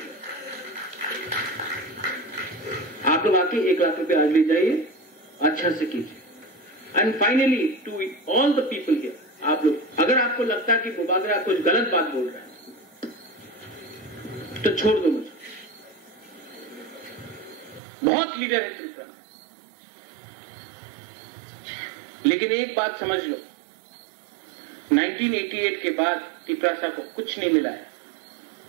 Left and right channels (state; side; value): drops out; left; at 17.8 s